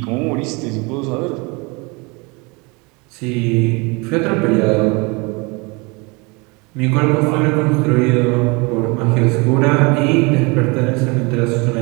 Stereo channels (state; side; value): quieter; left; 27.9 dB